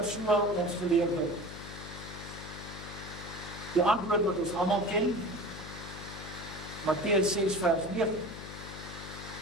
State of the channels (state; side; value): noise; left; hum, 11 dB below the sound